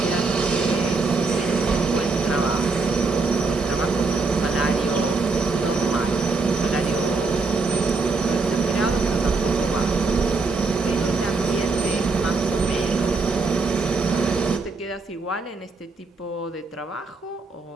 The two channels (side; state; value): left; quieter; 4.0 dB